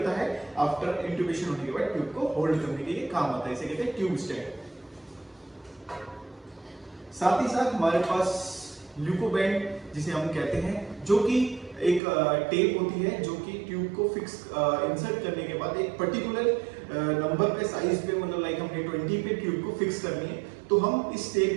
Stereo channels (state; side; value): drops out; left; at 12.0 s